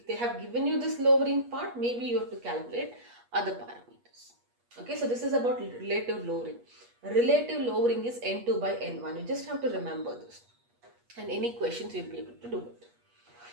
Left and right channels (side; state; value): left; late; 8.3 ms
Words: have given you this lowering part, maybe you have to calculate other parameters. Okay, so this is about relative lowering. Relative lowering is N2 by N1. You just have to remember this. And any questions, you'll be able to do it.